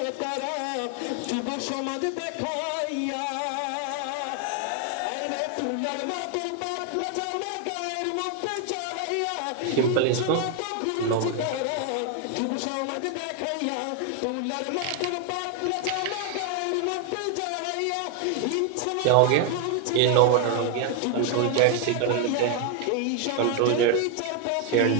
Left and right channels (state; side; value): different; both; correlation 0.01